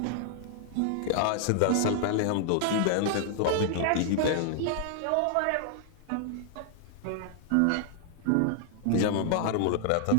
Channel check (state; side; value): different; both; correlation 0.00